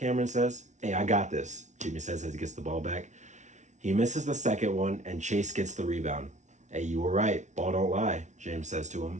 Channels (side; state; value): left; late; 0.34 ms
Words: says. Hey, I got this, Jimmy says as he gets the ball back. He misses the second one, and Chase gets the rebound. Hey, you were right. Ball don't lie, James says to